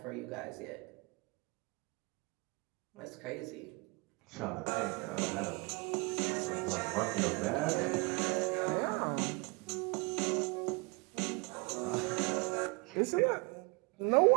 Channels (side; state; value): left; quieter; 28.6 dB